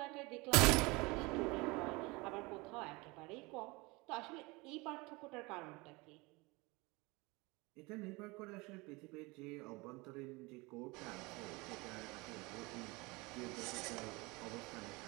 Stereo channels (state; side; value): quieter; left; 24.8 dB